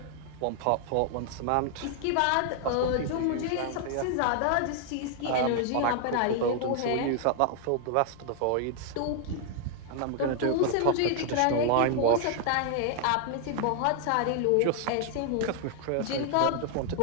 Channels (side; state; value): both; different; correlation 0.00